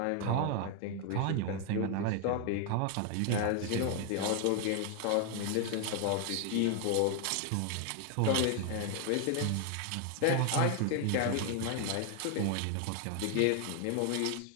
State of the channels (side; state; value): both; different; correlation 0.00